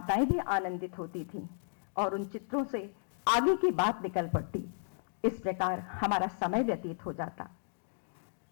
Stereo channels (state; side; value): silent; right; digital silence